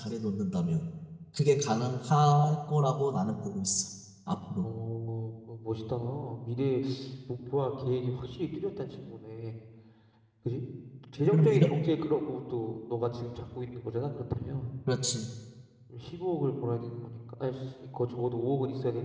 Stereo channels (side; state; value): both; identical; correlation 1.00